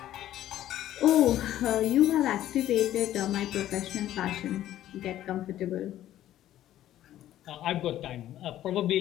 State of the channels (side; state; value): right; quieter; 12.8 dB